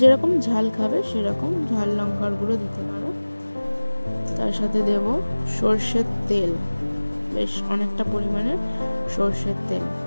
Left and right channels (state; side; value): inverted; both; correlation -1.00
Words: ঝাল খাবে সেরকম ঝাল লঙ্কার গুঁড়ো দিতে পারো। তার সাথে দেব সর্ষের তেল, বেশ অনেকটা পরিমাণে সর্ষের তেল।